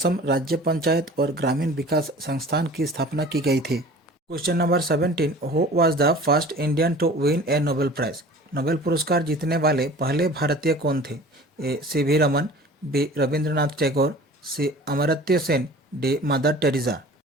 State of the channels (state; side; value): normal; both; correlation 0.43